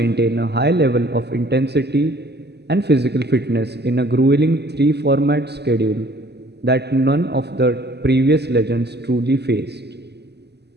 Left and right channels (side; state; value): left; late; 0.49 ms